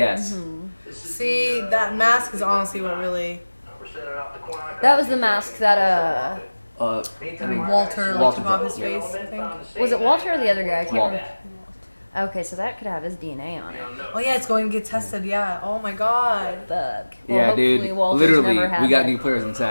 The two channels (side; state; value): both; inverted; correlation -1.00